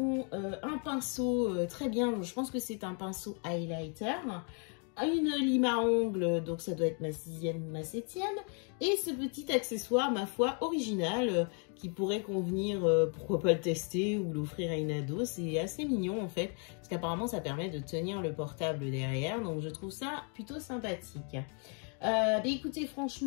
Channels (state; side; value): quieter; right; 39.6 dB